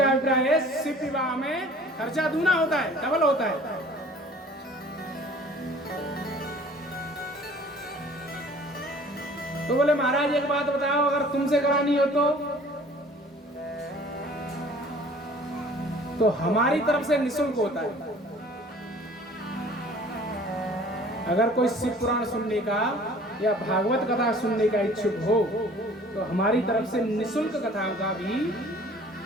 अभिप्राय है शिव विवाह में खर्चा दूना होता है, डबल होता है। तो बोले महाराज एक बात बताओ, अगर तुमसे करानी हो तो हमारी तरफ से निःशुल्क होता है। अगर कोई शिव पुराण सुनने का या भागवत कथा सुनने का इच्छुक हो तो हमारी तरफ से निःशुल्क कथाओं का भी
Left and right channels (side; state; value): both; normal; correlation 0.50